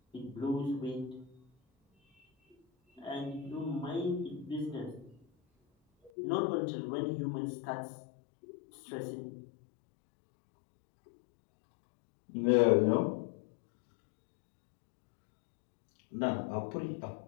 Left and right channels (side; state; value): right; drops out; at 6.1 s